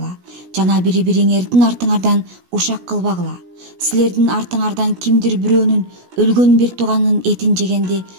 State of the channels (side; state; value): left; late; 17 ms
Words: жана бири-бириңердин артыңардан ушак кылбагыла. Силердин артыңардан кимдир бирөөнүн өлгөн бир тууганын этин жегенди